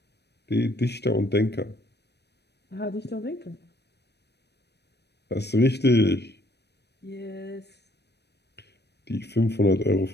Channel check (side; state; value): right; late; 0.49 ms